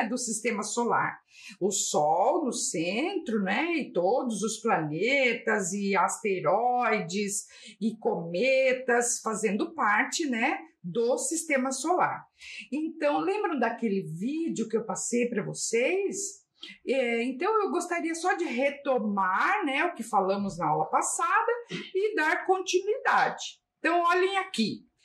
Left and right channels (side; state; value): both; identical; correlation 1.00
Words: Do sistema solar. O Sol no centro, né? E todos os planetas e asteroides e cometas fazendo parte, né? Do sistema solar. Então, lembram daquele vídeo que eu passei para vocês? Então, eu gostaria só de retomar, né? O que falamos na aula passada e dar continuidade. Então, olhem aqui.